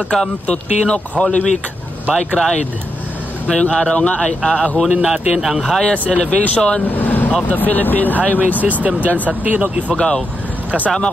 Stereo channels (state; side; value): normal; both; correlation 0.84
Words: to Tinok Holy Week Bike Ride. Ngayong araw nga ay aahunin natin ang highest elevation of the Philippine Highway System dyan sa Tinok, Ifugao. Kasama